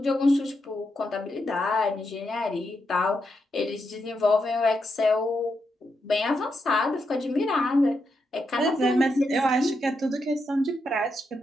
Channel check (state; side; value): normal; both; correlation 0.83